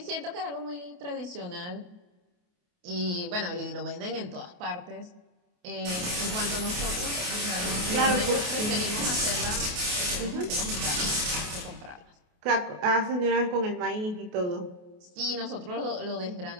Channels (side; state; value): left; late; 28 ms